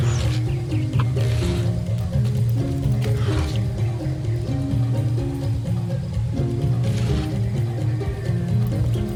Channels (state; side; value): identical; both; correlation 1.00